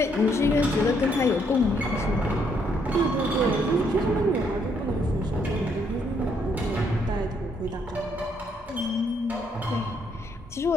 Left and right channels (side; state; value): both; normal; correlation 0.71